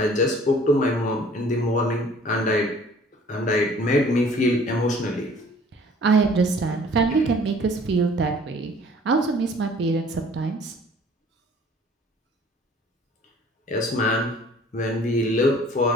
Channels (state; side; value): normal; both; correlation 0.53